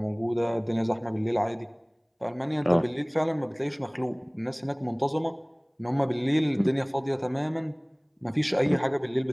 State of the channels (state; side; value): identical; both; correlation 1.00